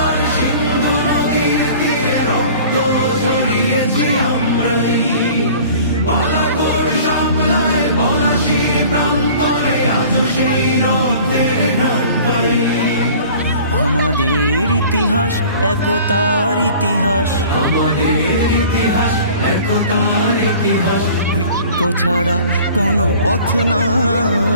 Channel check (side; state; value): both; inverted; correlation -0.46